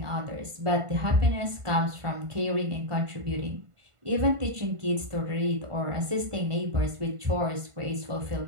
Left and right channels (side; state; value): left; late; 1.5 ms